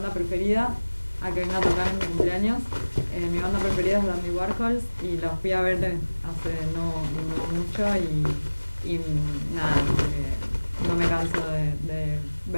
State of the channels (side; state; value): both; inverted; correlation -1.00